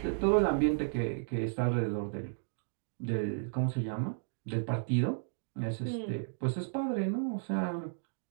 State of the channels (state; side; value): silent; left; digital silence